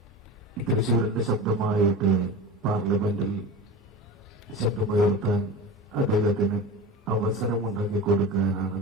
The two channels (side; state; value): both; normal; correlation 0.30